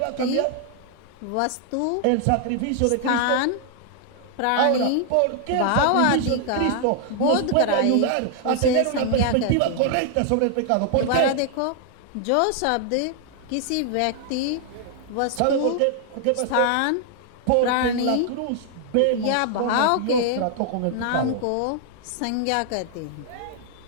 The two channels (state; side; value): different; both; correlation 0.00